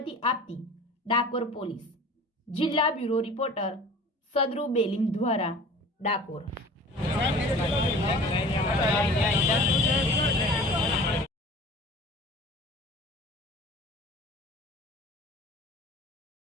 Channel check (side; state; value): both; normal; correlation 0.43